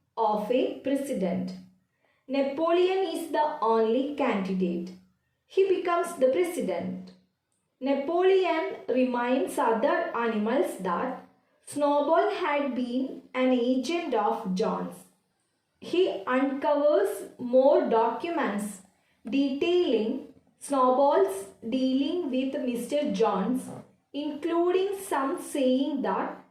of a president. Napoleon is the only candidate. He becomes the president. Napoleon reminds other animals that Snowball had been an agent of John's. He uncovers more documents detailing Snowball's dealing with Mr. Jones, including some saying that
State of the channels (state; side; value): identical; both; correlation 1.00